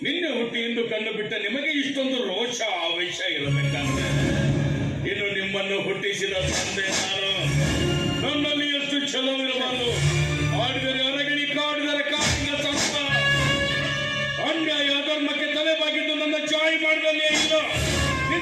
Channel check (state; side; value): identical; both; correlation 1.00